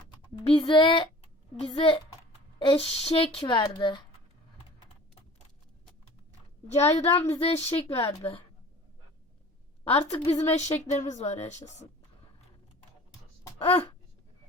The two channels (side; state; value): both; normal; correlation 0.44